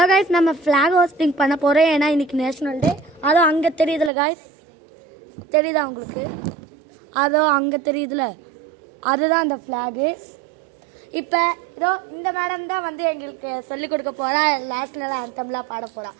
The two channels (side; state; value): left; drops out; at 4.1 s